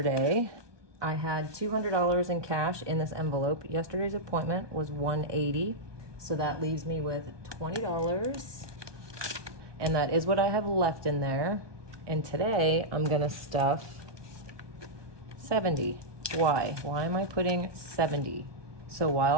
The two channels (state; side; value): late; left; 1.2 ms